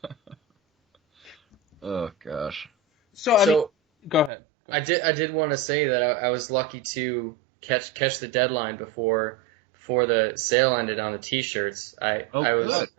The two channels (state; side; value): drops out; left; at 4.3 s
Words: Oh gosh. So go ahead. I did want to say that I was lucky to catch the deadline before the sale ended on the T-shirts. Really?